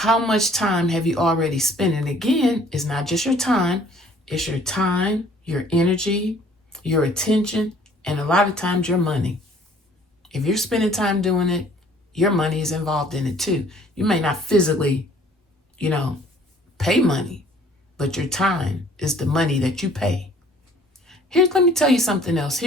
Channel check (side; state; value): both; normal; correlation 0.56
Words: much time have you already spent? And again, it's not just your time, it's your time, your energy, your attention, and a lot of times your money. If you're spending time doing it, your money is involved in it too. You may not physically, pay money, but your time is the money that you pay. Let me tell you something else.